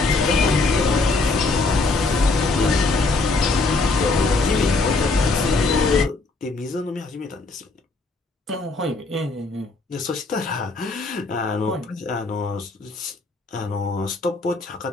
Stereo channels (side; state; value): right; quieter; 3.6 dB